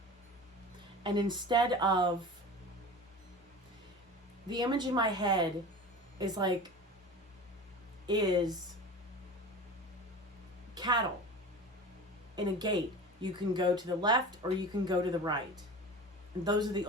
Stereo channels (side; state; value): both; normal; correlation 0.34